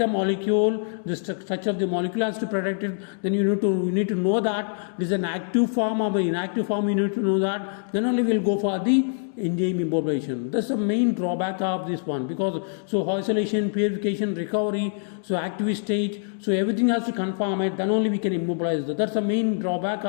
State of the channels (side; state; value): right; silent; digital silence